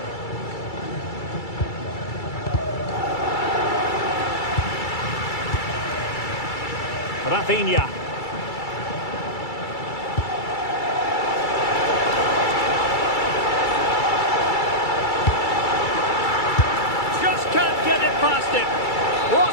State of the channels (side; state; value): right; late; 2.3 ms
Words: Rafinha. Just can't get it past him.